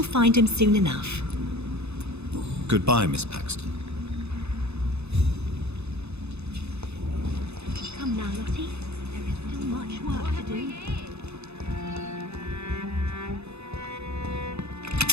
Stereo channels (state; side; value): late; left; 0.80 ms